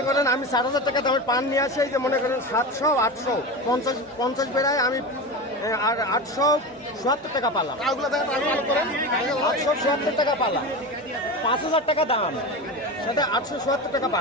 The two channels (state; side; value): normal; both; correlation 0.25